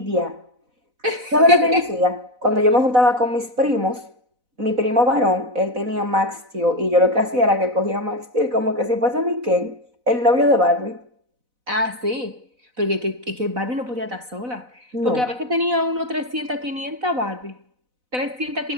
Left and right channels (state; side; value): late; left; 4.0 ms